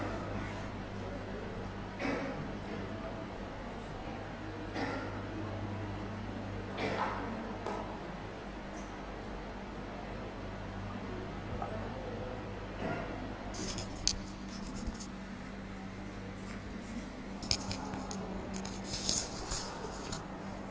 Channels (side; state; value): both; identical; correlation 1.00